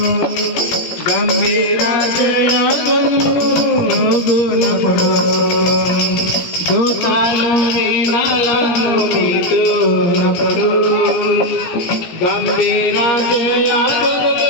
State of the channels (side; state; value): right; late; 17 ms